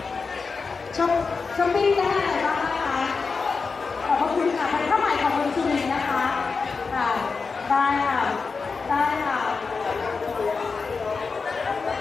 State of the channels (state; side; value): quieter; right; 4.7 dB